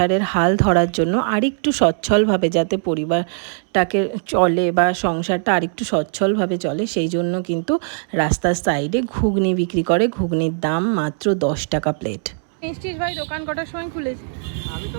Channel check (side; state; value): left; silent; 66 dB below the other